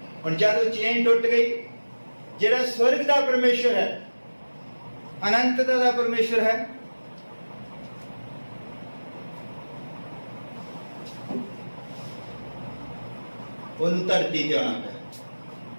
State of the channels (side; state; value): both; inverted; correlation -1.00